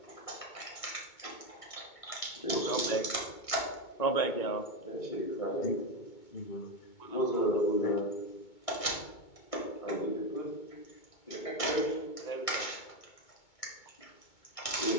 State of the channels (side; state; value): right; late; 2.2 ms